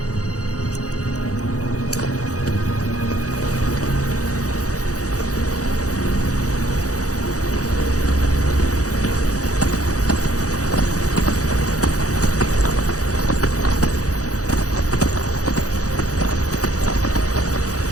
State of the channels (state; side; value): late; right; 0.66 ms